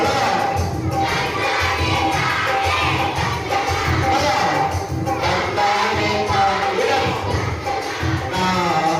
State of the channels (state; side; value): identical; both; correlation 1.00